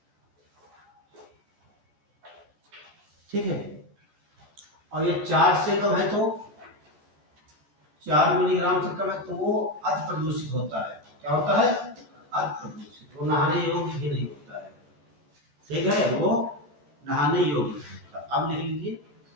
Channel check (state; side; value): late; left; 14 ms